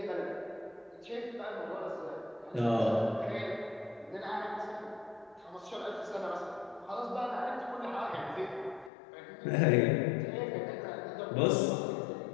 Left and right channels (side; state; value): right; drops out; at 8.9 s